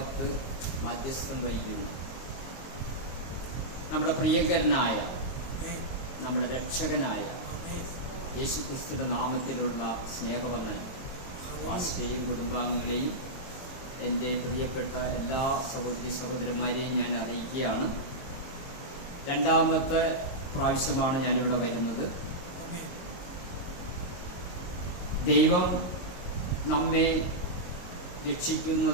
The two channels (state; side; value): late; right; 22 ms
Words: മധ്യസ്ഥം വഹിക്കുന്നു നമ്മുടെ പ്രിയങ്കരനായ, നമ്മുടെ രക്ഷകനായ യേശുക്രിസ്തുവിന്റെ നാമത്തിലുള്ള സ്നേഹവന്ദനം ആസ്റ്റേയും കുടുംബാംഗങ്ങളെയും എൻ്റെ പ്രിയപ്പെട്ട എല്ലാ സഹോദരി സഹോദരന്മാരെയും ഞാൻ അറിയിക്കുകയാണ്. രണ്ടാമത്തെ പ്രാവശ്യമാണ് ഞാനിവിടെ വരുന്നത്. ദൈവം നമ്മെ